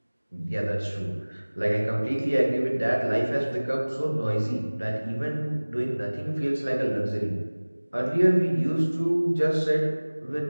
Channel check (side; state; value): both; inverted; correlation -1.00